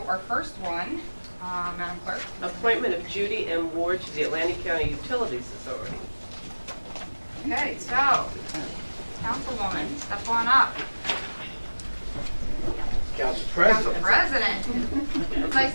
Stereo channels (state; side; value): inverted; both; correlation -1.00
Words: our first one, Madam Clerk. Appointment of Judy M. Ward to the Atlantic County Utilities Authority. Okay, so, Councilwoman, step on up. Council Council President. It's nice